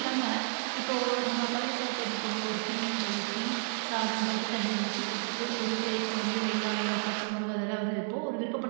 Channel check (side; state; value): left; silent; 55 dB below the other